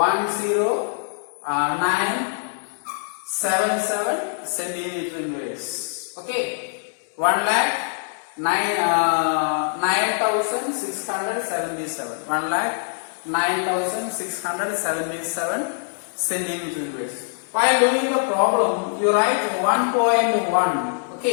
centimeter inverse. Okay, 1,09,677. 1,09,677 centimeter inverse. While doing the problem, you write 1.1.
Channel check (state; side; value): silent; right; digital silence